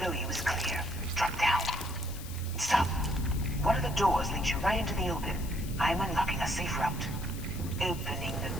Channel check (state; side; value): noise; left; hiss, 14 dB below the sound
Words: you is clear. Drop down. Stop. One of the doors leads you right into the open. I'm unlocking a safe route. Opening the